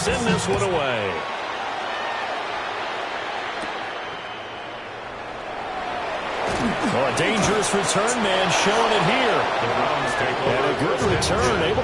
this one away. Oh, a dangerous return man showing it here. And a good return, able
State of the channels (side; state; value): both; identical; correlation 1.00